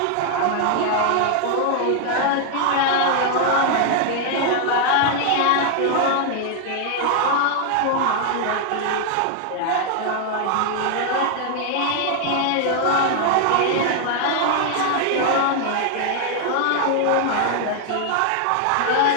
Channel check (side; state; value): both; different; correlation 0.00